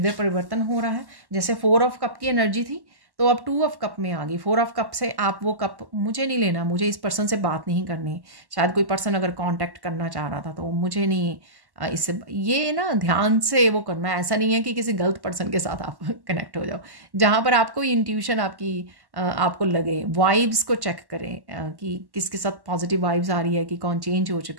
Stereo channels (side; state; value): left; late; 1.1 ms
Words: परिवर्तन हो रहा है। जैसे 4 ऑफ कप की एनर्जी थी, तो अब 2 ऑफ कप में आ गई। 4 ऑफ कप से आप वो कप, मुझे नहीं लेना, मुझे इस पर्सन से बात नहीं करनी। शायद कोई पर्सन अगर कांटेक्ट करना चाह रहा था, तो मुझे नहीं इससे, ये ना ध्यान से वो करना है। ऐसा नहीं है कि किसी गलत पर्सन के साथ आप कनेक्ट हो जाओ। जहाँ पर आपको इंट्यूशन आपकी आपको लगे, वाइब्स को चेक करें कि किसके साथ पॉजिटिव वाइब्स आ रही है, कि कौन चेंज हो